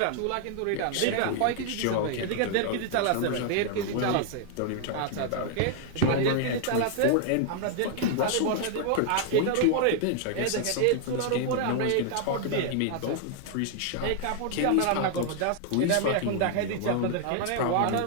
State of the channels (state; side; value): different; both; correlation 0.00